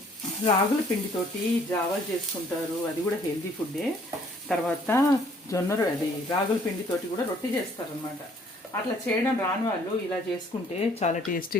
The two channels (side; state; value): both; normal; correlation 0.60